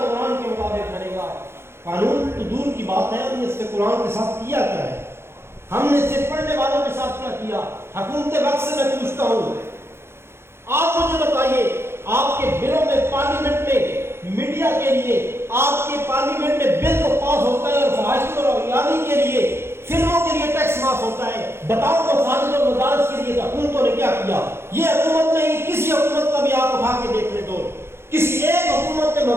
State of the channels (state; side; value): late; left; 0.12 ms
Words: کے مطابق بنے گا۔ قانون تو دور کی بات ہے، ہم نے اس کے قرآن کے ساتھ کیا کیا ہے؟ ہم نے صرف پڑھنے والوں کے ساتھ کیا کیا؟ حکومت وقت سے میں پوچھتا ہوں، آپ مجھے بتائیے، آپ کے بلوں میں پارلیمنٹ میں میڈیا کے لیے، آپ کے پارلیمنٹ میں بل تو پاس ہوتا ہے اور فحاشی اور اغیاری کے لیے، فلموں کے لیے ٹیکس معاف ہوتا ہے، بتاؤ مساجد اور مدارس کے لیے حکومتوں نے کیا کیا؟ یہ حکومت نہیں، کسی حکومت کا بھی آپ اٹھا کے دیکھ لیں تو کسی ایک حکومت نے